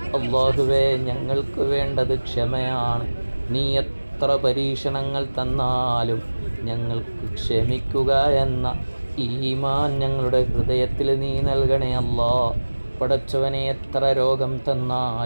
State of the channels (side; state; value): both; inverted; correlation -1.00